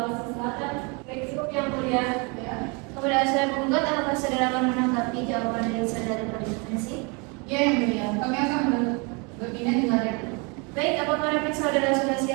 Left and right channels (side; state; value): left; quieter; 31.3 dB